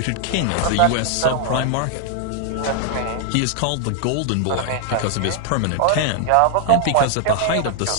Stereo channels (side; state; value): both; different; correlation 0.00